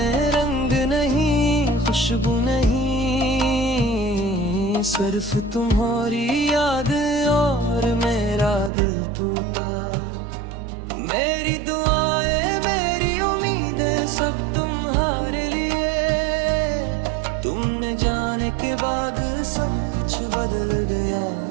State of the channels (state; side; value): drops out; left; at 8.7 s